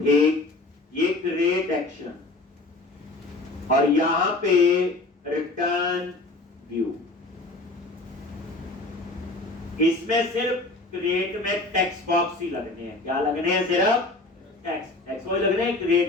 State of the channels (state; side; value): quieter; right; 3.1 dB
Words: एक ये क्रिएट एक्शन, और यहां पे रिटर्न व्यू। इसमें सिर्फ क्रिएट में टेक्स्ट बॉक्स ही लगने हैं। क्या लगने हैं? सिर्फ टेक्स्ट वो लगने हैं